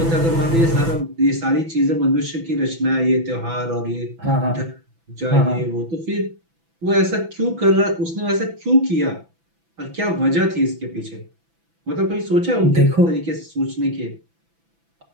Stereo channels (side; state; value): left; late; 6.0 ms